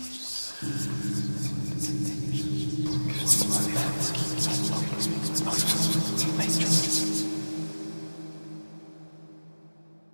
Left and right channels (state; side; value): inverted; both; correlation -1.00